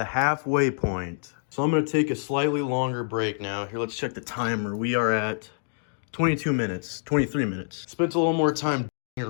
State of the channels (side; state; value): right; silent; digital silence